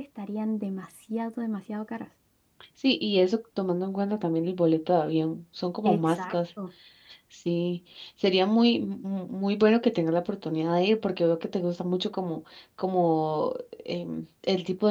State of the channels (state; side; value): identical; both; correlation 1.00